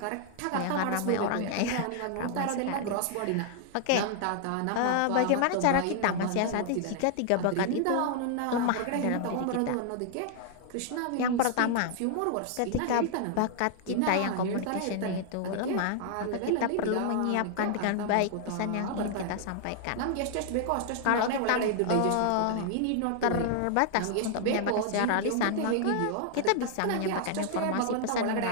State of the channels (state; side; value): different; both; correlation 0.00